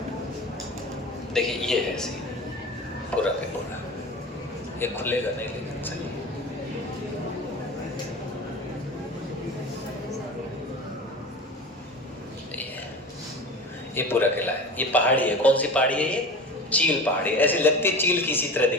देखिए ये है सी पूरा का पूरा, ये खुलेगा नहीं लेकिन सही। ये पूरा किला है, ये पहाड़ी है, कौन सी पहाड़ी है ये? चील पहाड़ी, ऐसी लगती है चील की इसी तरह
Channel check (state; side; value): normal; both; correlation 0.33